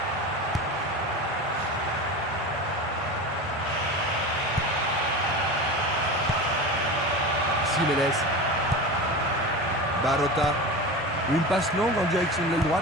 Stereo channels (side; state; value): both; normal; correlation 0.28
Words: Jiménez. Barota. Une passe longue en direction de l'aile